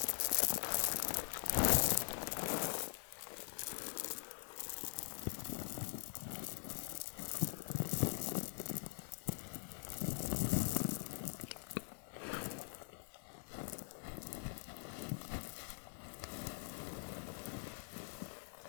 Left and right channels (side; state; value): right; silent; digital silence